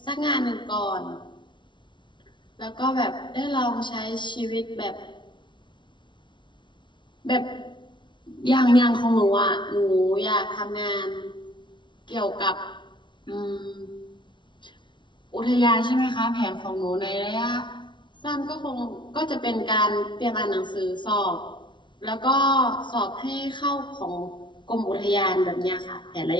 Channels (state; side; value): late; right; 0.23 ms